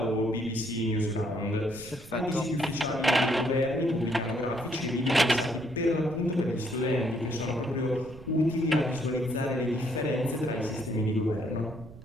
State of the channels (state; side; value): noise; right; rumble, 17 dB below the sound